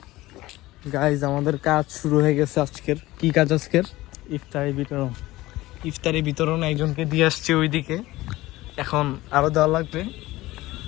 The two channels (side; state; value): right; quieter; 18.1 dB